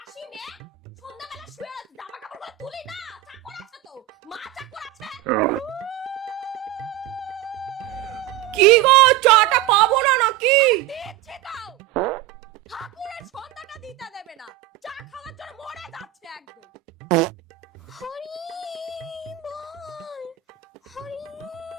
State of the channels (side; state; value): left; quieter; 14.5 dB